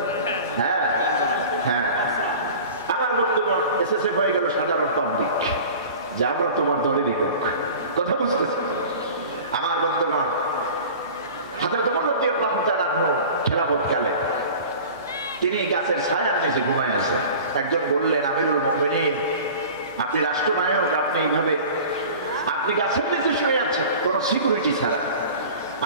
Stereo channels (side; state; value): both; inverted; correlation -0.40